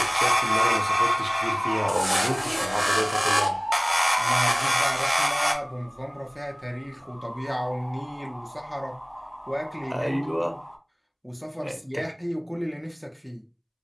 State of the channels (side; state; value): both; identical; correlation 1.00